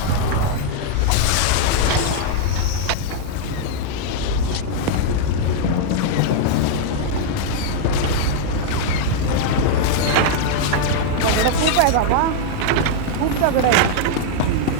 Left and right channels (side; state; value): both; different; correlation -0.01